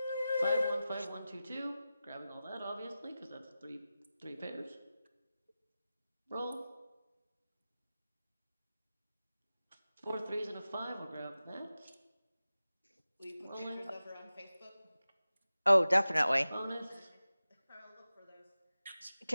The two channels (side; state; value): both; inverted; correlation -0.95